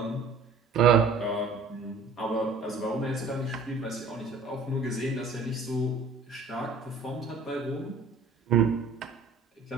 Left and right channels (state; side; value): quieter; left; 4.1 dB